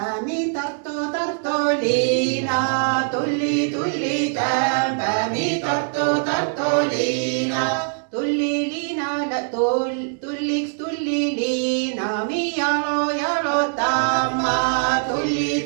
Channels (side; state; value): left; silent; 64 dB below the other